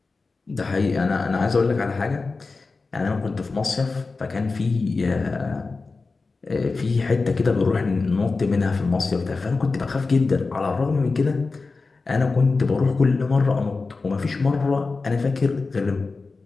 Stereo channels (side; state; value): right; quieter; 4.0 dB